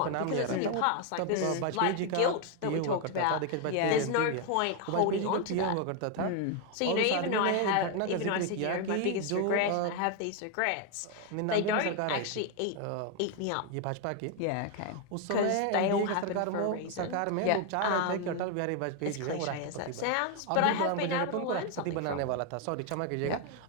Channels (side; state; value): both; different; correlation 0.01